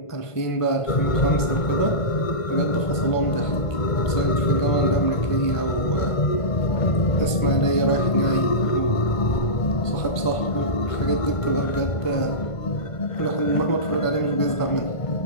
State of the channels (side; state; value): right; late; 1.5 ms